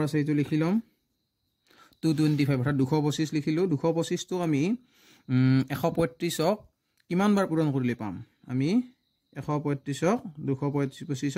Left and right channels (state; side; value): identical; both; correlation 1.00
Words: আছে এটো লিখি লম 225 অৰ্থাৎ 225 লিখিলো 225 টো আমি 135 ক কিমান বাৰ পূৰণ কৰিলে পাম আমি 135 ক 225 ক